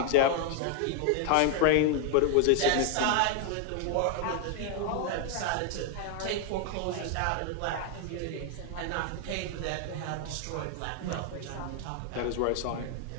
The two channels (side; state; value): both; different; correlation 0.00